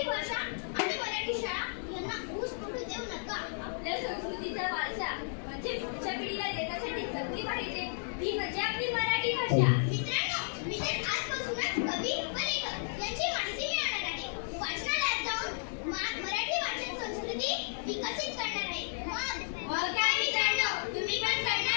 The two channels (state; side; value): silent; right; digital silence